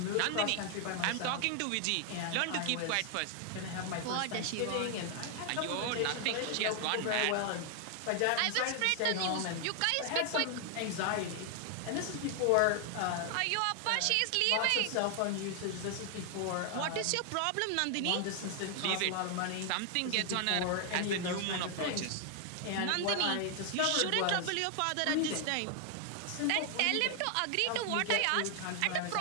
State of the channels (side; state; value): both; different; correlation 0.00